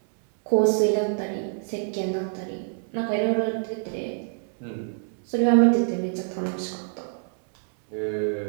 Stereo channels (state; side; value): silent; left; 61 dB below the other